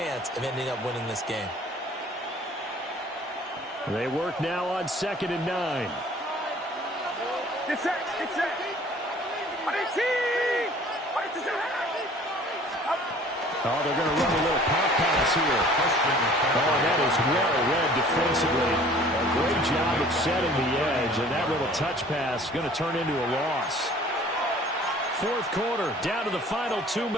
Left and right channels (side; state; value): both; normal; correlation 0.51